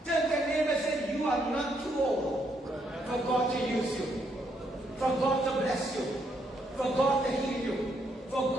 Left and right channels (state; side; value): normal; both; correlation 0.75